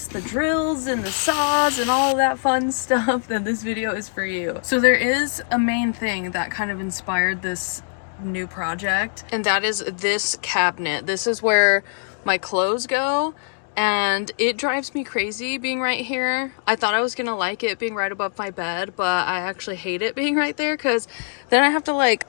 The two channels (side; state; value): right; silent; digital silence